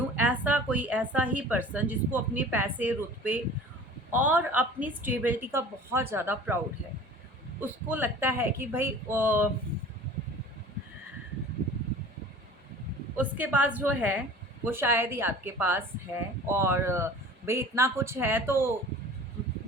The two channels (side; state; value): both; normal; correlation 0.43